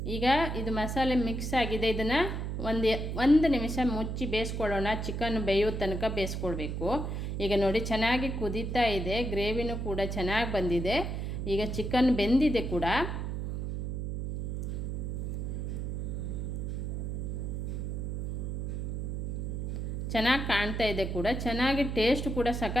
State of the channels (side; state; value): right; noise; hum, 3 dB below the sound